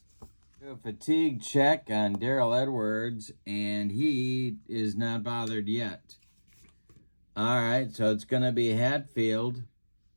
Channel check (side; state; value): both; inverted; correlation -1.00